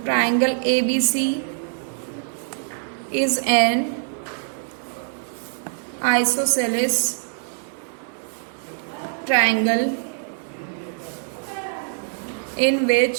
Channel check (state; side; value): silent; left; digital silence